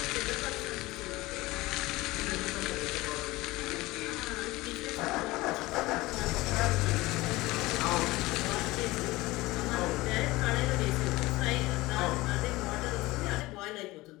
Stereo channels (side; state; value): right; quieter; 20.0 dB